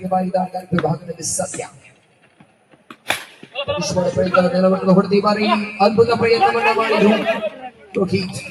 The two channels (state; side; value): identical; both; correlation 1.00